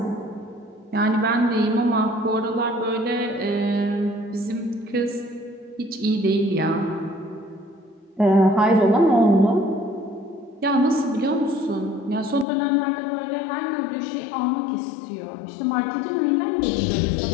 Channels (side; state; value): right; drops out; at 12.5 s